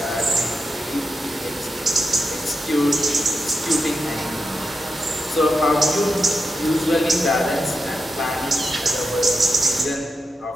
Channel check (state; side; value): normal; both; correlation 0.87